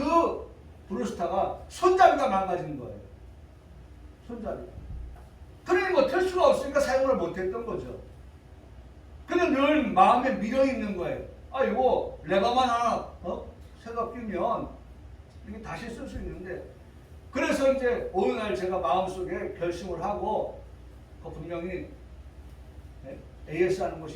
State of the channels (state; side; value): identical; both; correlation 1.00